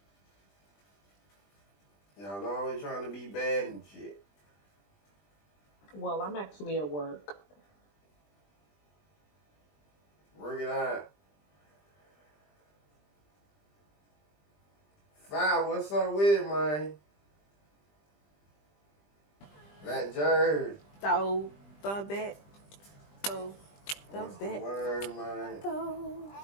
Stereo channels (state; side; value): late; right; 20 ms